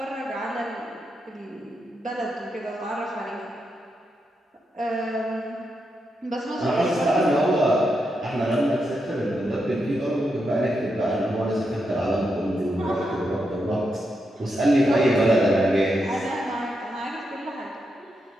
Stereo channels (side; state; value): both; normal; correlation 0.84